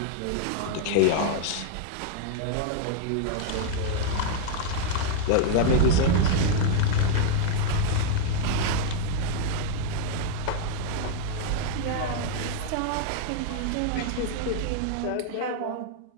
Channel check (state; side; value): different; both; correlation 0.00